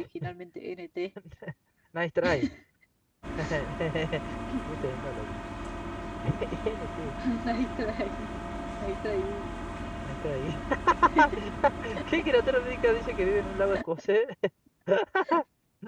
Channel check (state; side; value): identical; both; correlation 1.00